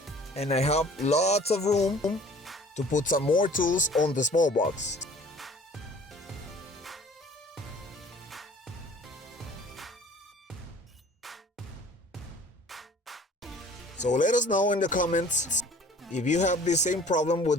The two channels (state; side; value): normal; both; correlation 0.50